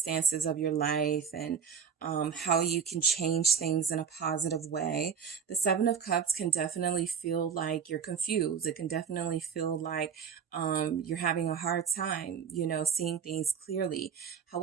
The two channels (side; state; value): left; quieter; 7.3 dB